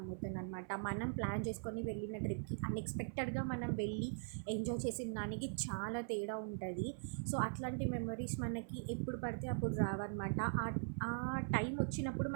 అనమాట. మనం ప్లాన్ చేసుకొని వెళ్ళిన ట్రిప్కి అన్ఎక్స్పెక్టెడ్గా మనం వెళ్ళి ఎంజాయ్ చేసిన దానికి చాలా తేడా ఉంటుంది. సో అట్లాంటి మెమరీస్ మనకి ఎప్పుడు పడితే అప్పుడు రావన్నమాట. ఆ టైం వచ్చినప్పుడు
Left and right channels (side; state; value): left; silent; 50 dB below the other